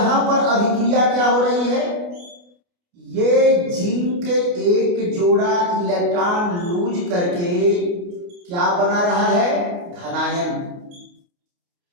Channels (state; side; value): late; left; 29 ms